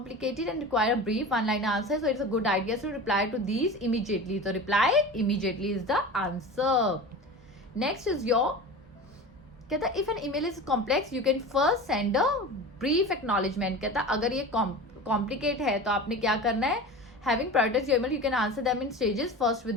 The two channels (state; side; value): normal; both; correlation 0.32